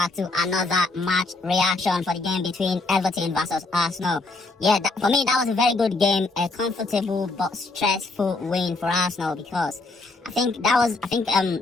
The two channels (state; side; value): quieter; right; 3.3 dB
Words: to another match reaction for the game between Everton versus Arsenal. Yeah, for me, that was a very good game, a comfortable but stressful win for Arsenal because